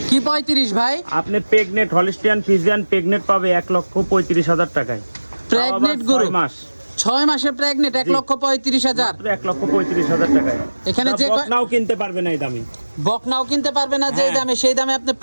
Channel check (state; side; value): inverted; both; correlation -1.00